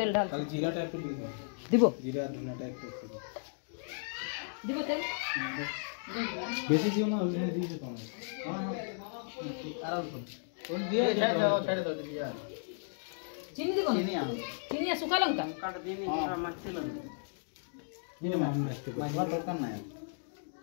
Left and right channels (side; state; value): right; silent; digital silence